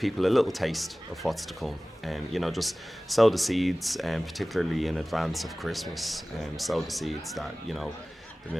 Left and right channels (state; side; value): normal; both; correlation 0.98